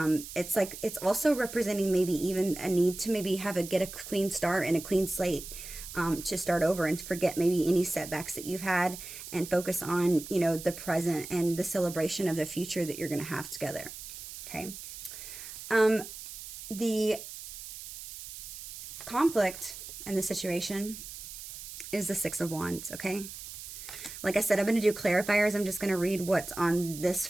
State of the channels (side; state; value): right; noise; hiss, 11 dB below the sound